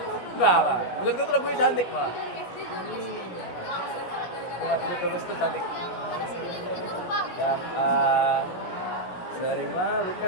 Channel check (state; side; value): late; right; 16 ms